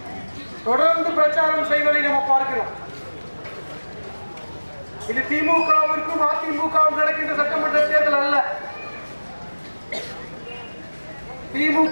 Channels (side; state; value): both; inverted; correlation -1.00